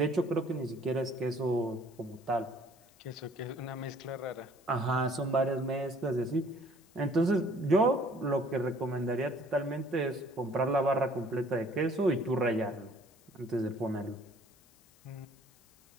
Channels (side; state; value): left; noise; hiss, 29 dB below the sound